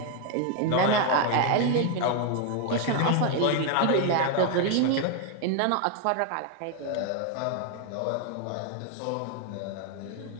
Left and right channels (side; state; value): both; different; correlation 0.00